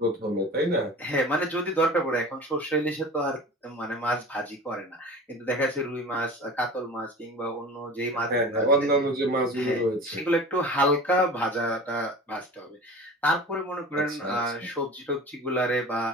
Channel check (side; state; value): both; normal; correlation 0.37